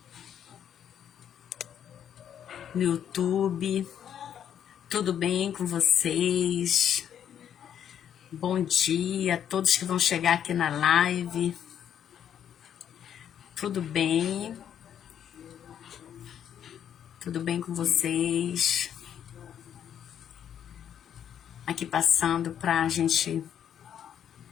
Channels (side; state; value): right; quieter; 9.3 dB